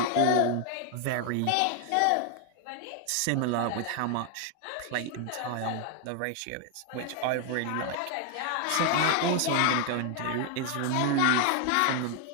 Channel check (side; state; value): both; different; correlation 0.00